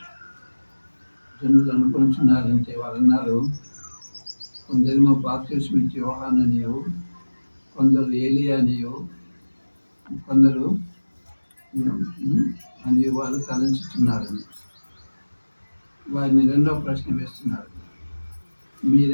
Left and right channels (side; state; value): both; inverted; correlation -1.00